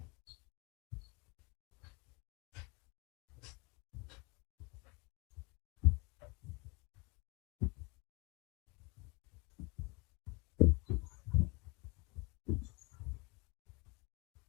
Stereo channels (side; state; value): right; quieter; 27.0 dB